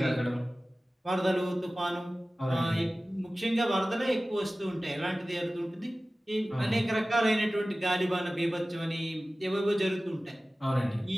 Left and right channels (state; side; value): normal; both; correlation 0.97